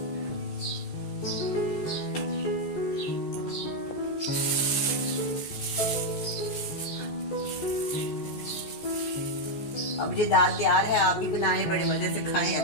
अब ये दाल तैयार है, आप भी बनाएं, बड़े मज़े से खाएं।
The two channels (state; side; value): late; right; 14 ms